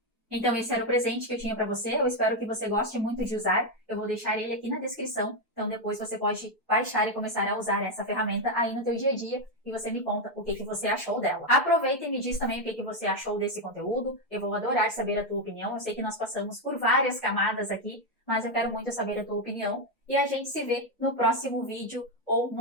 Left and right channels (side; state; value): both; normal; correlation 0.05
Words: Então esse era o presente que eu tinha para você, eu espero que você goste muito de usar, eu vou deixar ele aqui na descrição, então depois você pode baixar e começar a usar essa ferramenta aí no teu dia a dia e você me conta o que você achou dela. Aproveita e me diz também o que você achou desse conteúdo, eu vou adorar saber a tua opinião, eu sei que nós passamos por várias camadas aqui, mas eu quero muito saber a tua opinião e a gente se vê no próximo vídeo ou